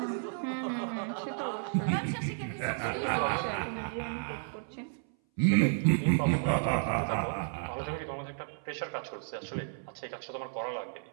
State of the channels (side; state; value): left; silent; 56 dB below the other